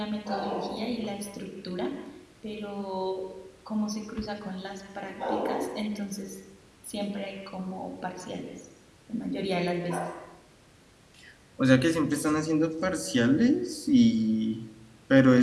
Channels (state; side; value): identical; both; correlation 1.00